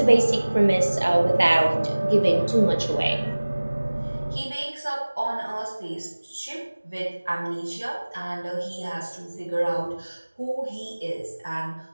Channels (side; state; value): both; inverted; correlation -1.00